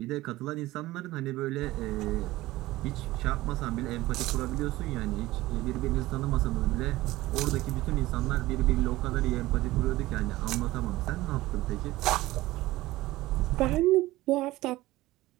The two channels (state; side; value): quieter; left; 17.8 dB